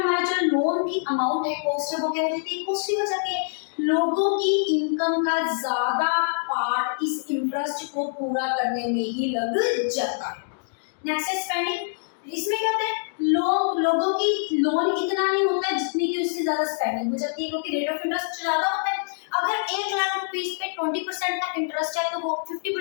हमारा जो लोन की अमाउंट है, कॉस्ट है, वो क्या हो जाती है, कॉस्टली हो जाती है। लोगों की इनकम का ज्यादा पार्ट इस इंटरेस्ट को पूरा करने में ही लग जाता है। नेक्स्ट है स्पेंडिंग। इसमें क्या होता है, लोगों की लोन इतना नहीं होता है जितनी की उससे ज्यादा स्पेंडिंग हो जाती है, क्योंकि रेट ऑफ इंटरेस्ट ज्यादा होता है। अगर 1,00,000 रुपीज पे 20% का इंटरेस्ट है तो वो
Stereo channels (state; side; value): silent; right; digital silence